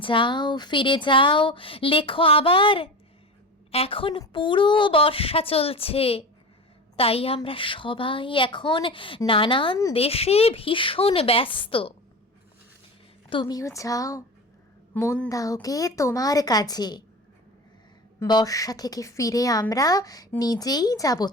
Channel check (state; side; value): normal; both; correlation 0.29